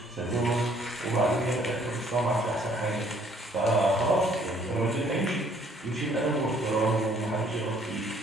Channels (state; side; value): normal; both; correlation 0.62